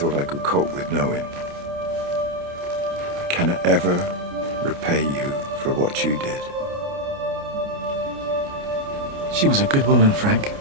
I could cope with knowing. I cannot ever repay you for what you did. She was a good woman, Frank.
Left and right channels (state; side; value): late; left; 29 ms